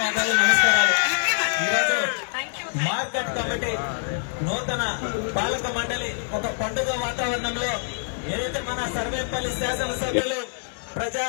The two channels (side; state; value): right; silent; digital silence